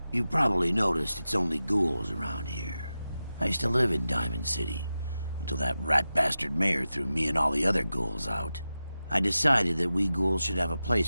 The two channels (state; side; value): inverted; both; correlation -0.93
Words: You've probably noticed it's only ghouls around here. I used to live in Diamond City, until that rat bastard mayor threw me and all the other ghouls out. I decided that we ghouls should have a